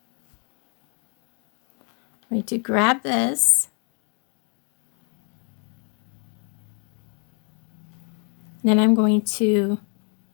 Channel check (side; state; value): right; quieter; 39.8 dB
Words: I'm going to grab this. And then I'm going to